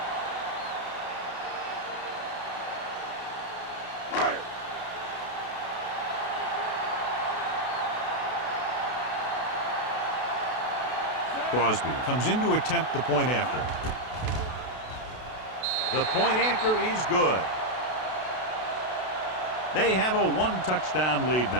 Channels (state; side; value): late; right; 32 ms